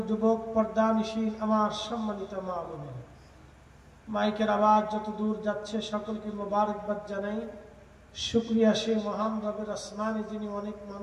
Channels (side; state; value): both; identical; correlation 1.00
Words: যুবক, পর্দানিশীল আমার সম্মানিত মা বোনেরা, মাইকের আওয়াজ যত দূর যাচ্ছে সকলকে মোবারকবাদ জানাই। শুকরিয়া সেই মহান রবের আসমানে যিনি অনেক